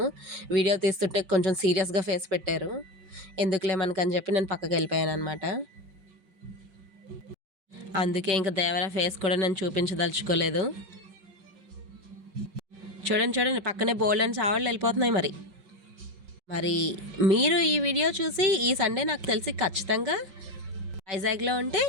వీడియో తీస్తుంటే కొంచెం సీరియస్గా ఫేస్ పెట్టారు. ఎందుకులే మనకని చెప్పి నేను పక్కకి వెళ్ళిపోయాను అనమాట. అందుకే ఇంకా దేవరా ఫేస్ కూడా నేను చూపించదలుచుకోలేదు. చూడండి చూడండి, పక్కనే బోల్డ్ అని చావళ్ళు వెళ్ళిపోతున్నాయి. మరి మీరు ఈ వీడియో చూసి ఈ సండే నాకు తెలిసి ఖచ్చితంగా వైజాగ్లో ఉంటే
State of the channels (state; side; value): late; left; 5.5 ms